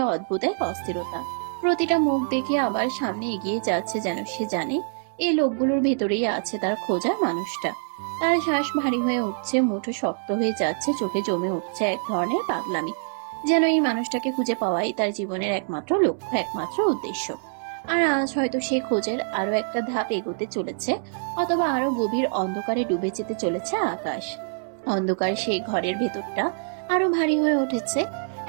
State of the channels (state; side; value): silent; left; digital silence